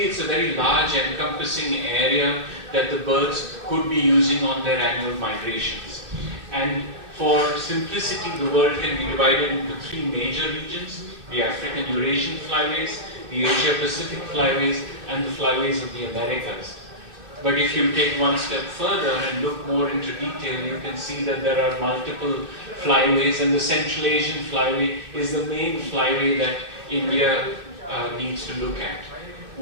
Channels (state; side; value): late; left; 2.7 ms